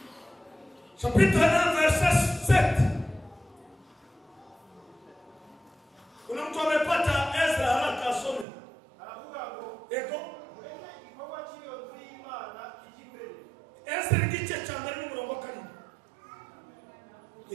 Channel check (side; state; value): left; drops out; at 8.5 s